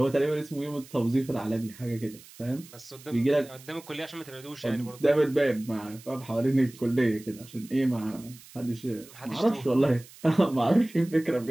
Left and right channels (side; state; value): right; noise; hiss, 21 dB below the sound